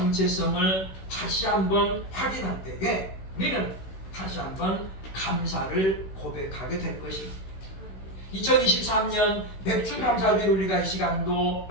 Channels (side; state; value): right; late; 16 ms